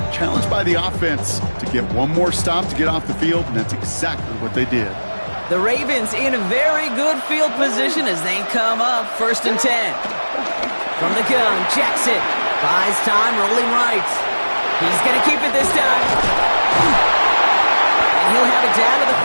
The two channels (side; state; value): both; inverted; correlation -1.00